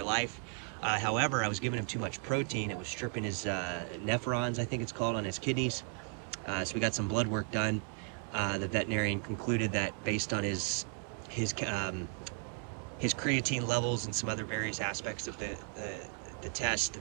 life. However, I was giving him too much protein. It was stripping his nephrons, I think it's called, on his kidneys. So we got some blood work done. The veterinarian concluded that based on his creatine levels and some other various aspects of the test,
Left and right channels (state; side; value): quieter; left; 38.7 dB